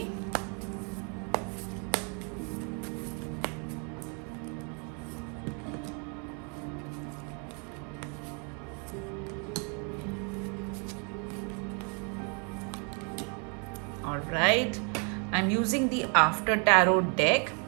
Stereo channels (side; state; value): left; quieter; 37.3 dB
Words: All right. I'm using the After Tarot deck.